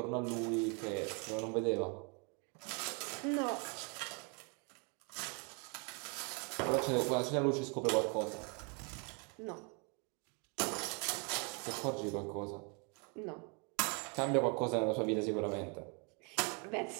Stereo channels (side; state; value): left; quieter; 35.0 dB